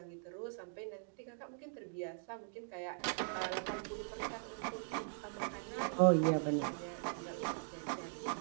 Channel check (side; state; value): left; silent; digital silence